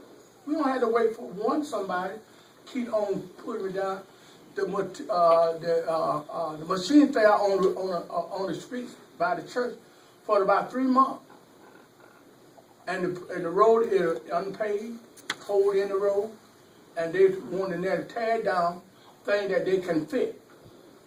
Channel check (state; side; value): identical; both; correlation 1.00